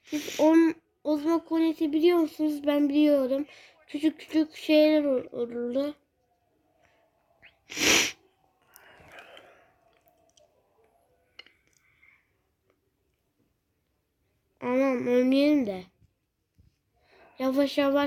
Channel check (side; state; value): both; identical; correlation 1.00